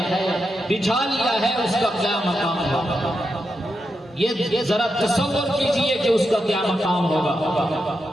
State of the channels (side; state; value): both; normal; correlation 0.86